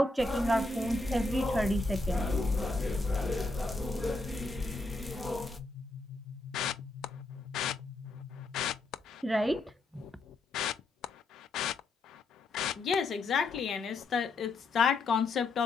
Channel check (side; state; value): right; quieter; 3.1 dB